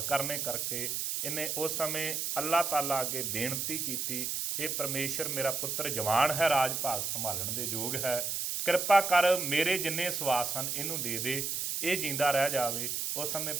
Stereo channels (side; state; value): right; noise; hiss, 1 dB below the sound